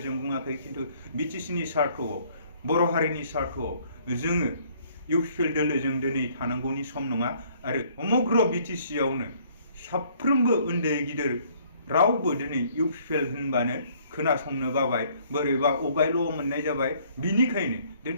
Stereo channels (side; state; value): both; inverted; correlation -0.61